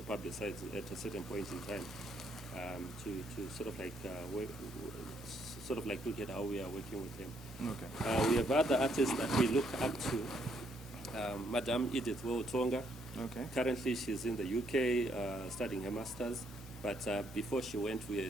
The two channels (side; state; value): both; normal; correlation 0.72